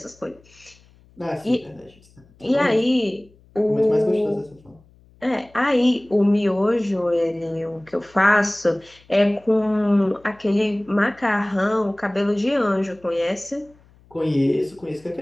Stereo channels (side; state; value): left; noise; hum, 29 dB below the sound